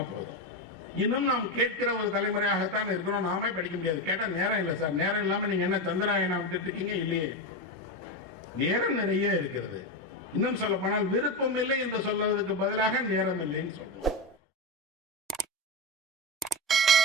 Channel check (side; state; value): both; normal; correlation 0.15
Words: போதும். இன்னும் நாம் கேட்கிற ஒரு தலைமுறையாகத்தான் இருக்கிறோம். நாமே படிக்க முடியாது. கேட்டா நேரம் இல்லை சார். நேரம் இல்லாம நீங்க என்ன சந்திராயனா விட்டுட்டு இருக்கீங்க? இல்லையே, நேரம் நிறைய இருக்கிறது. இன்னும் சொல்ல போனால் விருப்பம் இல்லை என்று சொல்றதுக்கு பதிலாக நேரம் இல்லைன்னு சொல்றோம்.